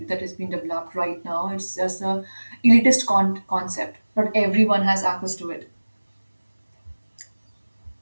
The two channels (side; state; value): both; inverted; correlation -1.00